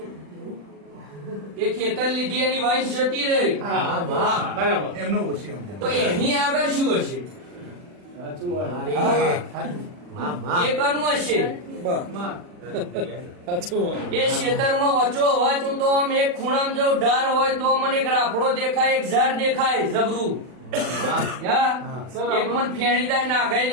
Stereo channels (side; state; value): left; late; 40 ms